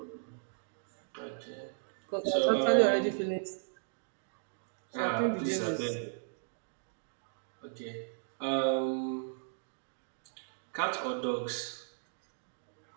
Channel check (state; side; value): silent; left; digital silence